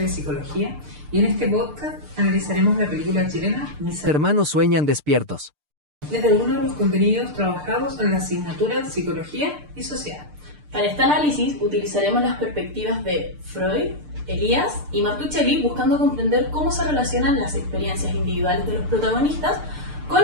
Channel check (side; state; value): left; late; 6.7 ms